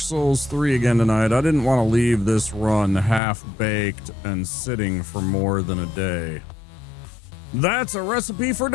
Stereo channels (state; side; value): drops out; right; at 3.2 s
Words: 3 again tonight. I didn't want to leave this run half-baked and sitting for more than a day. That's a recipe for